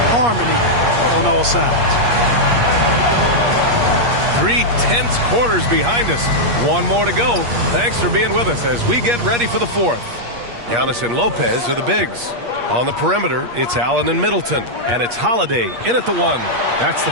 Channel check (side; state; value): left; late; 8.5 ms